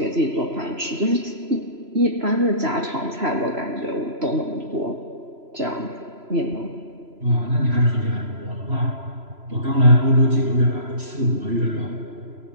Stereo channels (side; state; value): left; late; 3.0 ms